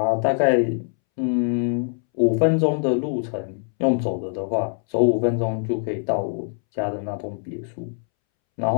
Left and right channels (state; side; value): silent; right; 63 dB below the other